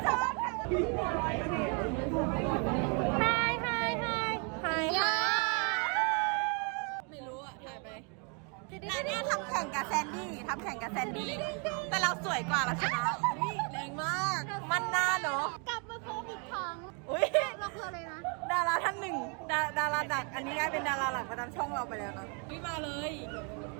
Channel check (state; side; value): quieter; left; 36.2 dB